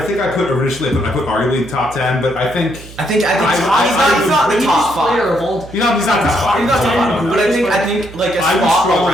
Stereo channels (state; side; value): noise; right; hum, 18 dB below the sound